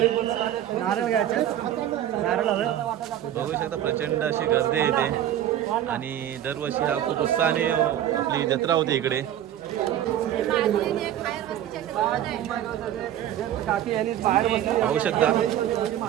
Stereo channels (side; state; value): left; quieter; 11.5 dB